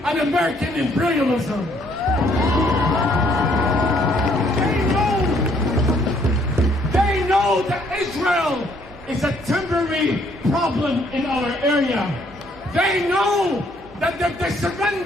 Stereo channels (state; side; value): normal; both; correlation 0.66